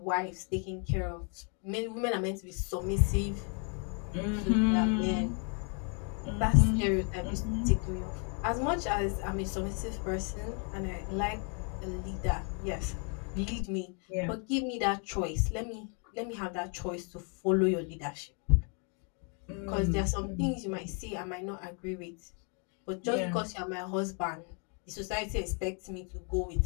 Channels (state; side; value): quieter; right; 39.2 dB